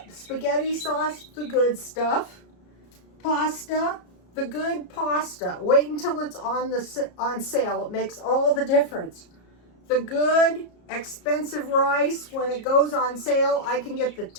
spaghetti sauce, the good stuff. Pasta, the good pasta. Wait until it's on sale. It makes all the difference. The good expensive rice, when it goes on sale, I can get the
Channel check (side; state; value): right; late; 33 ms